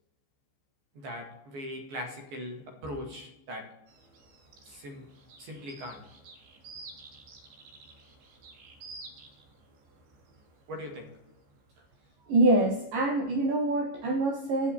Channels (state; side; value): late; left; 14 ms